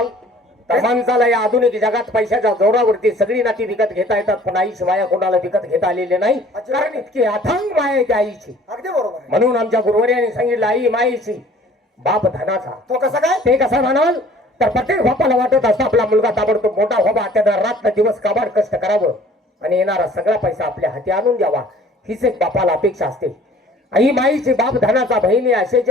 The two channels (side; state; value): both; normal; correlation 0.52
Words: तर माणसाला या आधुनिक जगात पैशाच्या जोरावरती सगळी नाती विकत घेता येतात पण आईची माया कोणाला विकत घेता आलेली नाही. कारण इतकी अथांग माया आहे त्या आईची. अगदी बरोबर आहे. म्हणून आमच्या गुरुवर्याने सांगितलं आई माईची बाप धनाचा. तो कसा काय ते कसं म्हणाल तर प्रत्येक बापाला वाटत असतं आपला मुलगा ताबडतोब मोठा व्हावा त्यानं रात्र दिवस काबाड कष्ट करावं आणि येणारा सगळा पैसा आपल्या हाती आणून द्यावा हीच एक बापाला अपेक्षा असते. आई माईची बाप धनाचा बहिणी असेच